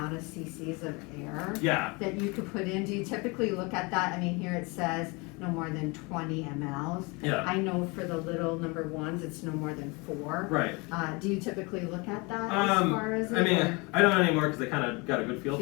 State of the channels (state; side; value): quieter; right; 27.8 dB